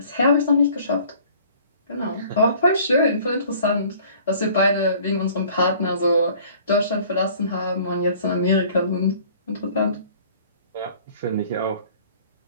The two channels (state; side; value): inverted; both; correlation -0.52